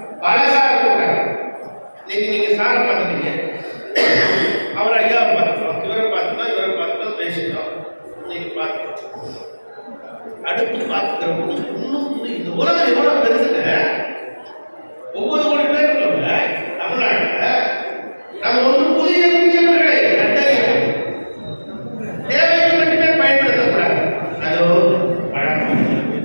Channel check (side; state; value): both; inverted; correlation -1.00